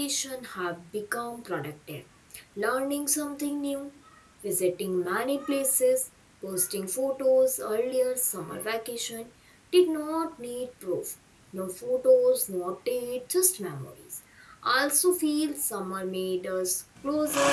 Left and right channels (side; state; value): both; identical; correlation 1.00